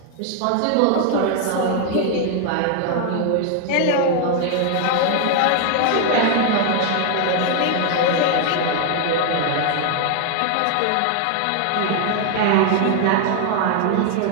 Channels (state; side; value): different; both; correlation 0.00